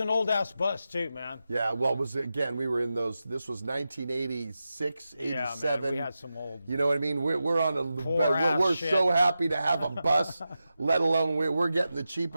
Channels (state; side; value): inverted; both; correlation -0.91